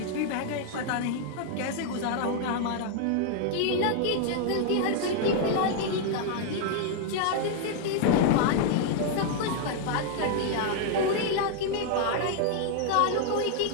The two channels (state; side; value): different; both; correlation 0.00